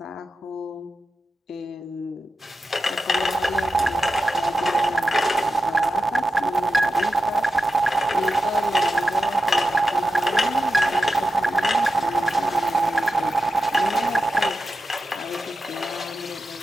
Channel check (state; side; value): normal; both; correlation 0.91